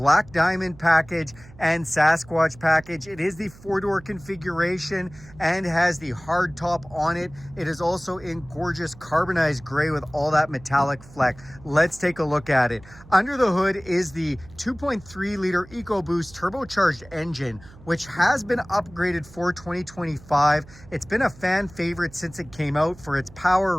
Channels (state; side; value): noise; right; hum, 21 dB below the sound